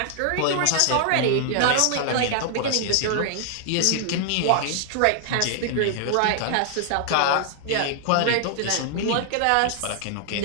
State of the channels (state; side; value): different; both; correlation 0.00